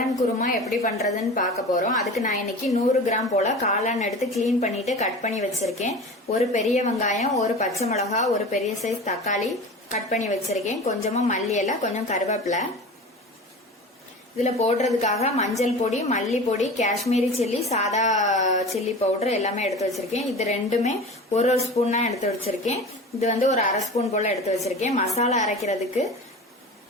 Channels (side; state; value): both; normal; correlation 0.34